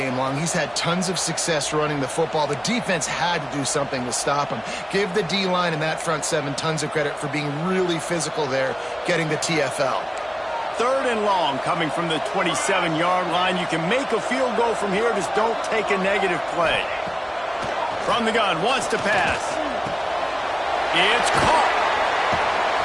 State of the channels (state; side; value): identical; both; correlation 1.00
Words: long. He's had tons of success running the football. The defense had to do something to stop him. Give the D-line and that front seven tons of credit for being really physical there, getting the TFL. 3rd and long coming from the 27-yard line. You can make a field goal from here, just don't take a negative play. From the gun, wants to pass. It's caught.